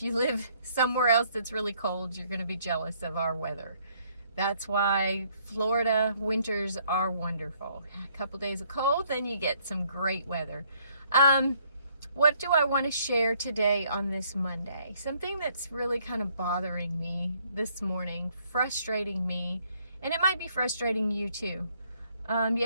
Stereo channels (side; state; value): both; inverted; correlation -0.67